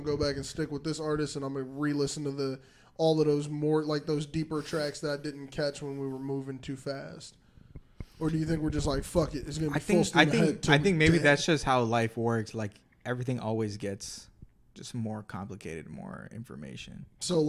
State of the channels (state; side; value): identical; both; correlation 1.00